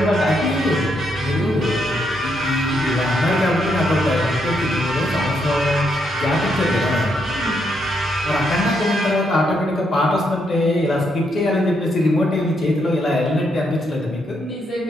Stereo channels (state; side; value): normal; both; correlation 0.77